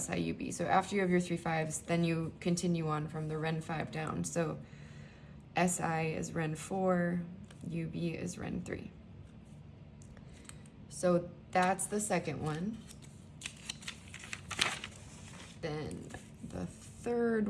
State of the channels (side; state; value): both; identical; correlation 1.00